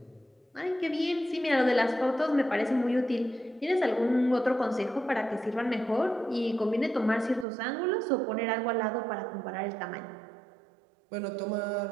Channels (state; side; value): drops out; left; at 7.5 s